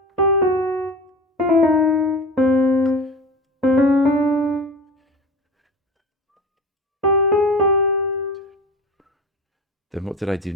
Then what did I do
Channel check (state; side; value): normal; both; correlation 0.32